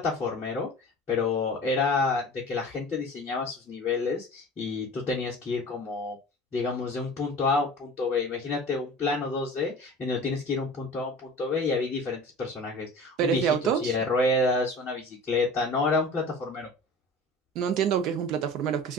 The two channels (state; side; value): normal; both; correlation 0.39